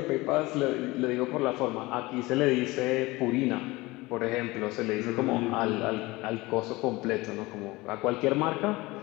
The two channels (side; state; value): right; quieter; 21.4 dB